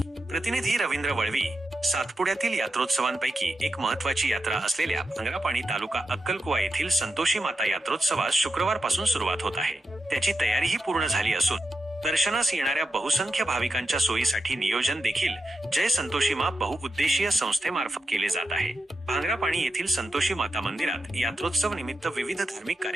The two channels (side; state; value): both; normal; correlation 0.88